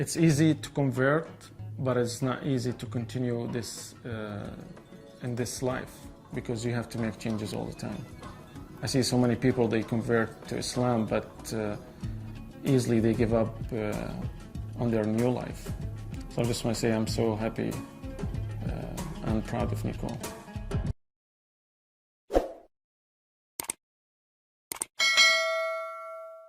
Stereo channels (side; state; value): both; identical; correlation 1.00